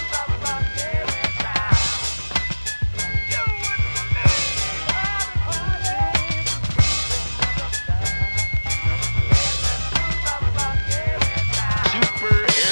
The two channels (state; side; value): inverted; both; correlation -1.00